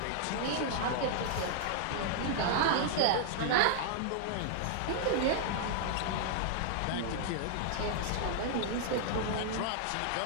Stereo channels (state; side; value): different; both; correlation -0.01